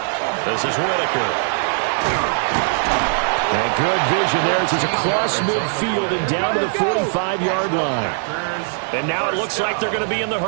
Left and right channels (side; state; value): left; silent; digital silence